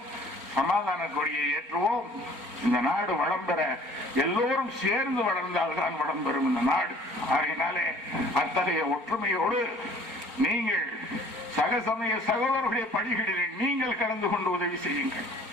சமாதான கொடியை ஏற்றுவோம். இந்த நாடு வளம் பெற எல்லோரும் சேர்ந்து வளர்ந்தால்தான் வளம் பெறும் இந்த நாடு. அதனாலே அத்தகைய ஒற்றுமையோடு நீங்கள் சகசமய சகோதரர்களுடைய பணிகளில் நீங்கள் கலந்து கொண்டு உதவி செய்யுங்கள்.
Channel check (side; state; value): left; late; 4.4 ms